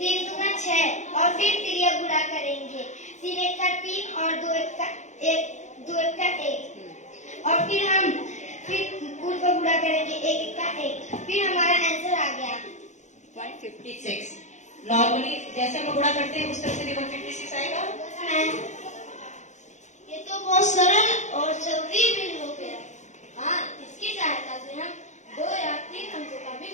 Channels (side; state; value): right; late; 0.34 ms